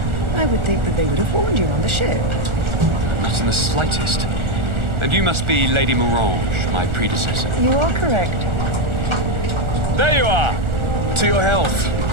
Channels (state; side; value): late; left; 1.4 ms